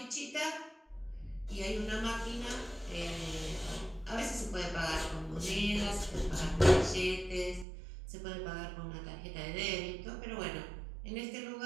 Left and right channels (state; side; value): drops out; left; at 7.7 s